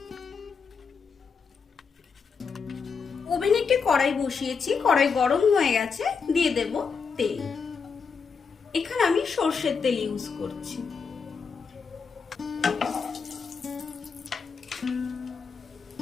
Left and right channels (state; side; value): quieter; right; 5.6 dB